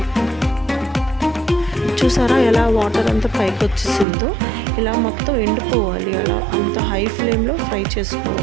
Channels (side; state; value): left; drops out; at 4.0 s